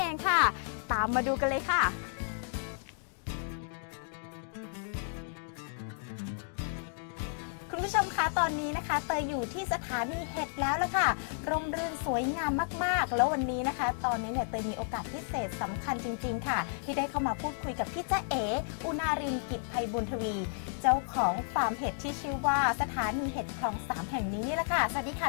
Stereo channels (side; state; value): right; silent; digital silence